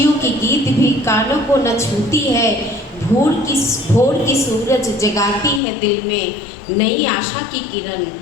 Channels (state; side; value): drops out; right; at 5.6 s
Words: की गीत भी कानों को न छूती है। भोर की सूरज जगाती है दिल में नई आशा की किरण।